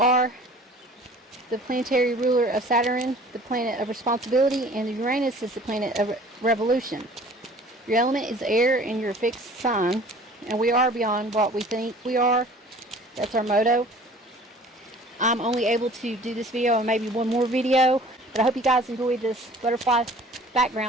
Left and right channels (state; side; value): normal; both; correlation 0.48